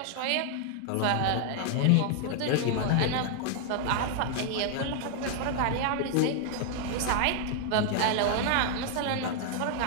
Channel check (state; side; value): different; both; correlation 0.00